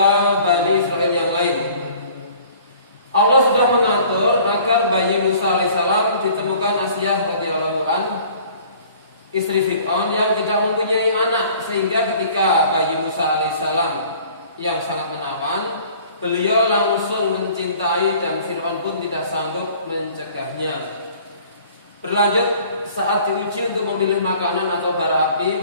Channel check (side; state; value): both; inverted; correlation -0.51